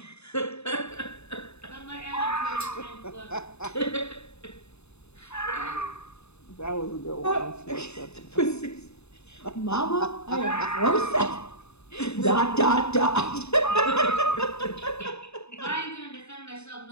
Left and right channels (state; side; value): late; right; 0.80 ms